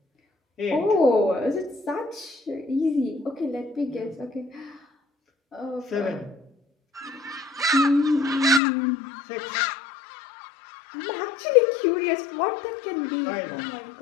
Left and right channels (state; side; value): drops out; right; at 8.6 s